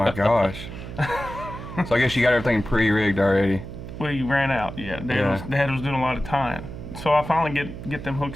gosh. So I guess you got everything pre-rigged already. We ran out. Yeah, Dad was doing a lot of tying. So I finally get them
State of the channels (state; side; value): noise; right; hum, 10 dB below the sound